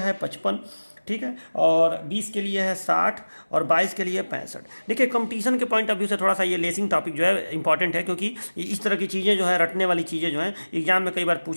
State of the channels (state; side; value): inverted; both; correlation -1.00